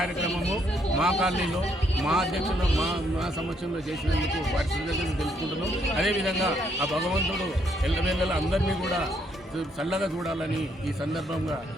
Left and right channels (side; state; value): both; normal; correlation 0.72